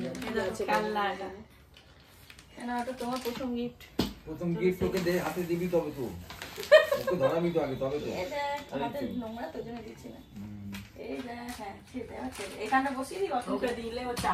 খেলনা। এটা তোমার প্রথম গিফট। প্রথম গিফট ওকে দে, হাতে দিবি তবে তো ওকে ধরাবি তো আগে, তবে তো এটা হাতে নোংরা তো জন্য দিচ্ছি না। এই যে হ্যাঁ সেটা আছে, এখানে বসিয়ে দিই, ওকে দিলে ও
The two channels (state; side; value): identical; both; correlation 1.00